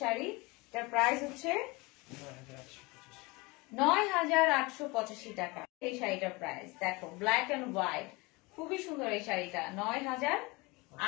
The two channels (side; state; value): right; quieter; 25.0 dB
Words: এটার প্রাইস হচ্ছে 9,885 টাকা। এই শাড়িটার প্রাইস দেখো, ব্ল্যাক এন্ড হোয়াইট, খুবই সুন্দর এই শাড়িটা।